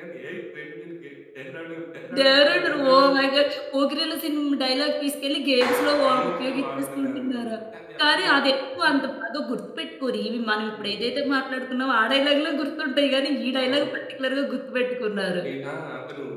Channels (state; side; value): identical; both; correlation 1.00